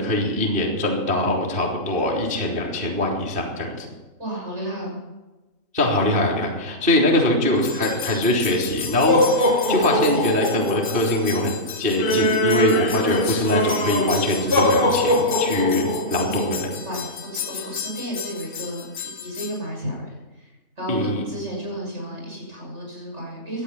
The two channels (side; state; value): left; late; 2.7 ms